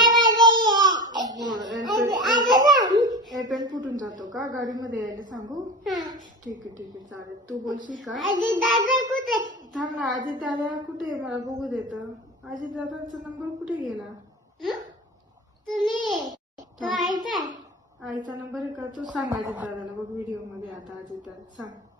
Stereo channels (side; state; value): both; normal; correlation 0.30